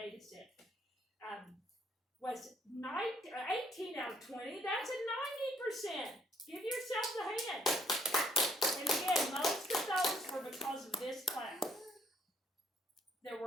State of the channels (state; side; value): normal; both; correlation 0.66